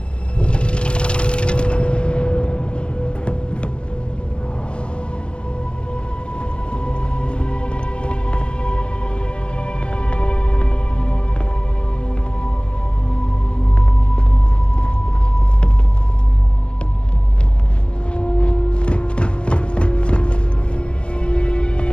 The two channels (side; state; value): right; late; 0.056 ms